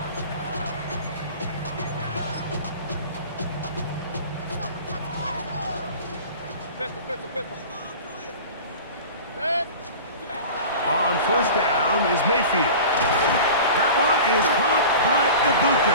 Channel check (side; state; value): both; inverted; correlation -0.37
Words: Pistol. Set. On first down is Mayfield. That one is caught by